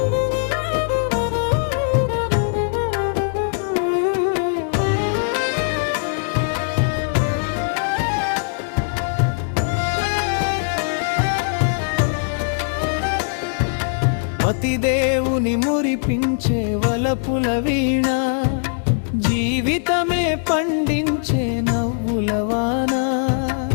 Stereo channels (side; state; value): right; silent; digital silence